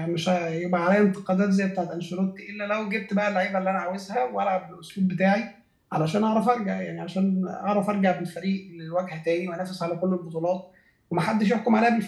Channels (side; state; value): both; identical; correlation 1.00